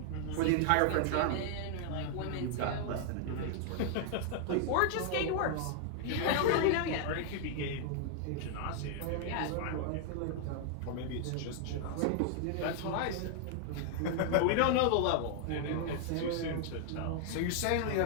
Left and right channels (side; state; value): both; different; correlation 0.00